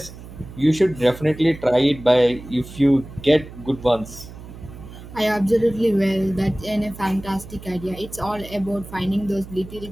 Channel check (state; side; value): noise; right; hum, 15 dB below the sound